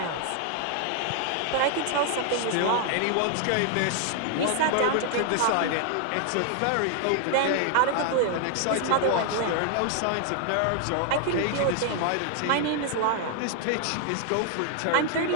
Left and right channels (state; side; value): different; both; correlation 0.00